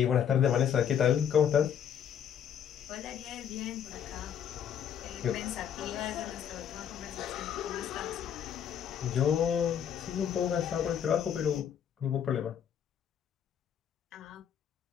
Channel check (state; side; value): quieter; right; 8.8 dB